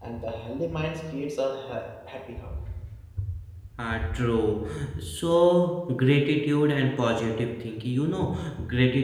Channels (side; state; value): both; identical; correlation 1.00